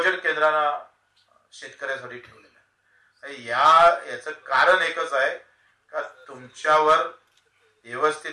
केंद्रानं शेतकऱ्यासाठी ठेवलेलं आहे. याचं कारण एकच आहे का तुमच्यावर व्यवस्थित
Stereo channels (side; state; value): both; identical; correlation 1.00